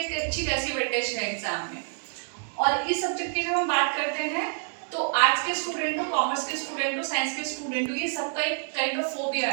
अच्छी खासी वेटेज है एग्जाम में। और इस सब्जेक्ट की जब हम बात करते हैं तो आर्ट्स के स्टूडेंट हो, कॉमर्स के स्टूडेंट हो, साइंस के स्टूडेंट हो, ये सबका एक काइंड ऑफ फोबिया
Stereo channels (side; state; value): left; silent; 60 dB below the other